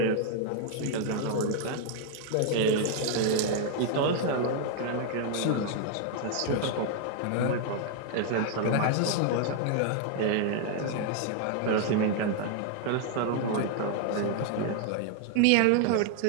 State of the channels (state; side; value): different; both; correlation 0.00